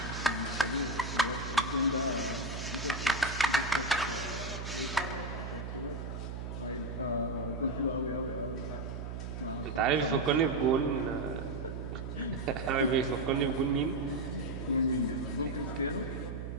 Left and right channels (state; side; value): noise; right; hum, 6 dB below the sound